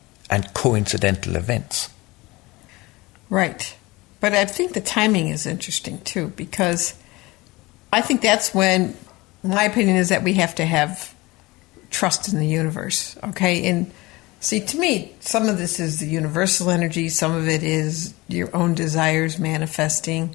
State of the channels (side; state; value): right; quieter; 21.8 dB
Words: and coincidental events. Right. But I think the timing is interesting too, because I think that's when, my opinion is that we have to have trust in the universe, okay? And see, to me, some of this is the universal energy, some of it is your own desires